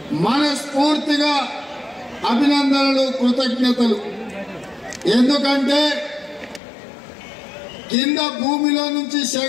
మనస్ఫూర్తిగా అభినందనలు, కృతజ్ఞతలు. ఎందుకంటే కింద భూమిలో నుంచి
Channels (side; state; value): right; drops out; at 6.6 s